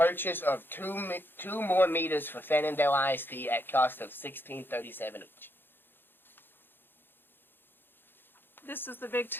of two more meters for Fannondale ISD at cost of $16.37 each. This is the big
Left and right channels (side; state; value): right; late; 0.099 ms